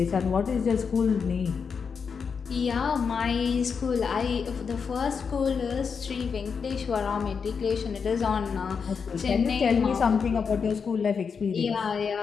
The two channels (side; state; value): right; quieter; 5.9 dB